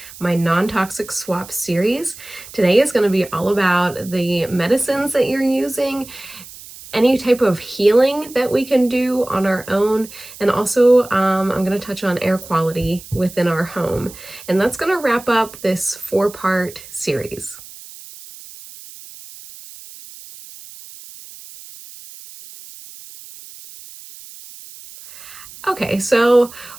my non-toxic swap series. Today is going to be all about the medicines that you're using, any type of healing that we can do on our own, and also I'm going to touch on air quality within our home. And that's going to wrap up this four-part series. Okay, so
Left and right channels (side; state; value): right; noise; hiss, 17 dB below the sound